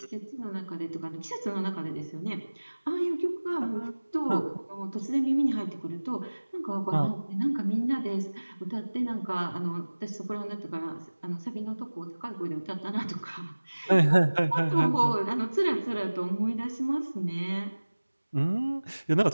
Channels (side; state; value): both; inverted; correlation -1.00